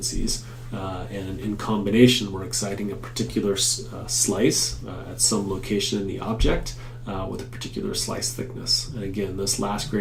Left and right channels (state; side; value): identical; both; correlation 1.00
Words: And in combination, we're exciting a particular slice at some location in the object with a particular slice thickness. And again, this last